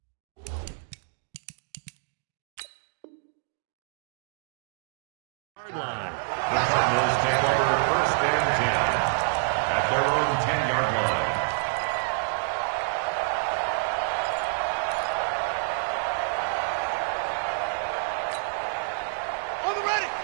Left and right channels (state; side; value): silent; left; digital silence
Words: Line. The Cardinals take over first and 10 at their own 10-yard line. On the ready.